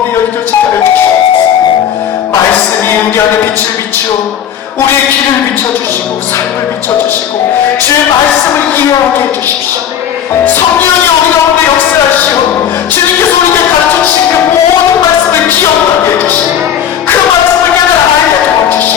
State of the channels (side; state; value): right; quieter; 9.3 dB